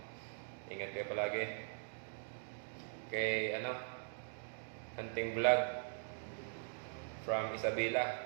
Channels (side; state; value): left; silent; digital silence